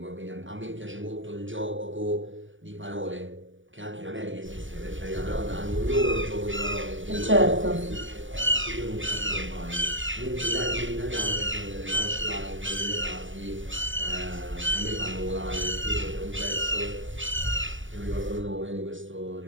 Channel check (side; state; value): left; late; 0.56 ms